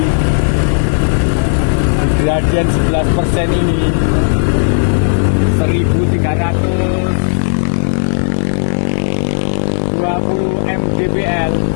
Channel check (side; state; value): right; silent; digital silence